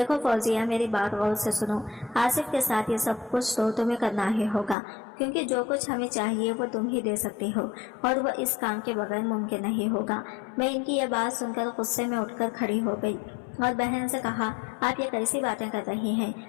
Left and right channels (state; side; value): drops out; right; at 4.8 s